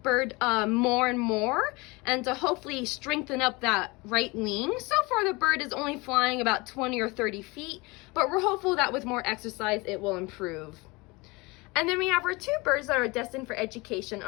more and more, and to hopefully strengthen up that right wing. So far the bird is only flying about 20 or 30 feet, but we're hopeful that with more exercise it will improve. And then we have our 2 birds that are destined for education.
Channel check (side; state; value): right; quieter; 24.9 dB